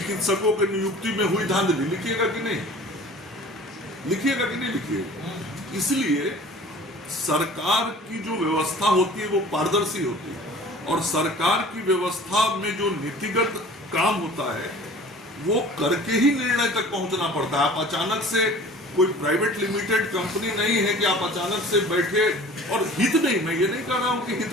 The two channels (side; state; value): both; normal; correlation 0.45